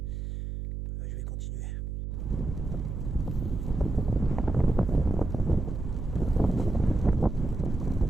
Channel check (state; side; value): noise; right; hum, 5 dB below the sound